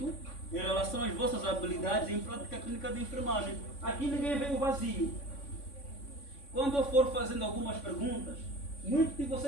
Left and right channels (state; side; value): late; right; 3.5 ms